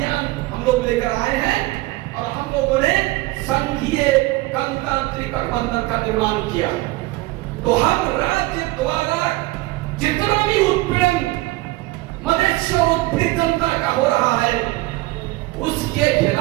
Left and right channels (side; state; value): left; quieter; 20.0 dB